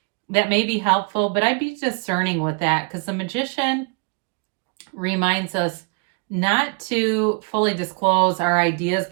that may be helpful, but I'd be discerning with that, because the Magician reminds us not to fully disclose our ideas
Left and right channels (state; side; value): quieter; left; 33.9 dB